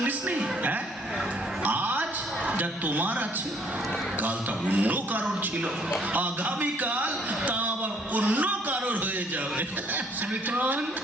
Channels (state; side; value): normal; both; correlation 0.63